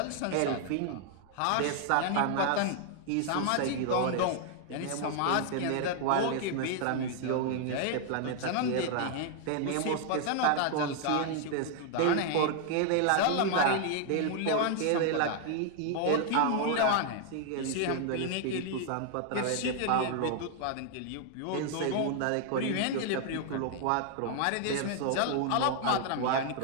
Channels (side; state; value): both; different; correlation 0.00